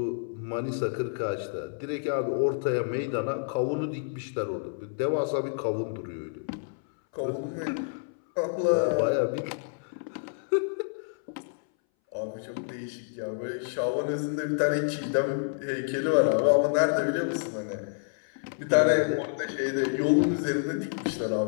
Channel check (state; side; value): silent; right; 59 dB below the other